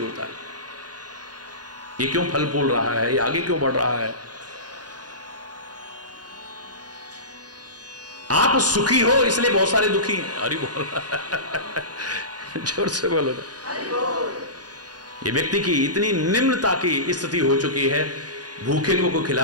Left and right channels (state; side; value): late; left; 0.69 ms